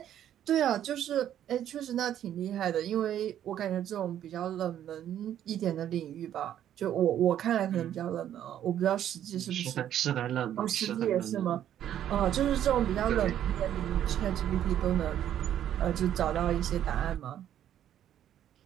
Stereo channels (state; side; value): quieter; left; 10.8 dB